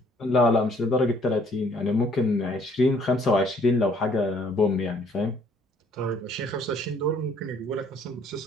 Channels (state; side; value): normal; both; correlation 0.61